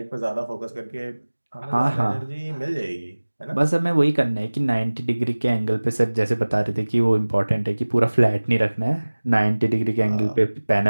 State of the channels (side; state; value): both; inverted; correlation -1.00